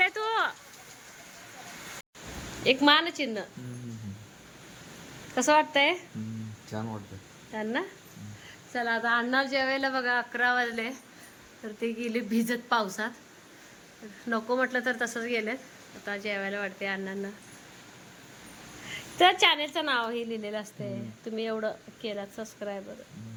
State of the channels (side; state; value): both; identical; correlation 1.00